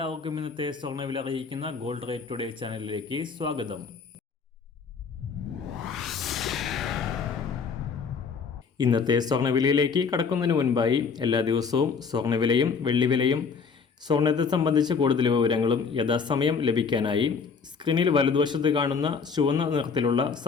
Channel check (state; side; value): quieter; right; 5.6 dB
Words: ഇന്നത്തെ സ്വർണ്ണവില അറിയിക്കുന്ന ഗോൾഡ് റേറ്റ് ടുഡേ ചാനലിലേക്ക് സ്വാഗതം. ഇന്നത്തെ സ്വർണ്ണവിലയിലേക്ക് കടക്കുന്നതിന് മുൻപായി എല്ലാ ദിവസവും സ്വർണ്ണവിലയും വെള്ളിവിലയും സ്വർണ്ണത്തെ സംബന്ധിച്ച കൂടുതൽ വിവരങ്ങളും യഥാസമയം ലഭിക്കാനായി സ്ക്രീനിൽ വലതുവശത്ത് കാണുന്ന ചുവന്ന നിറത്തിലുള്ള